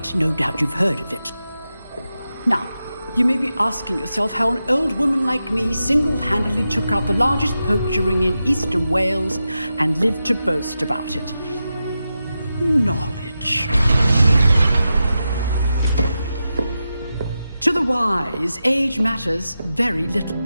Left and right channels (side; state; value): both; inverted; correlation -0.90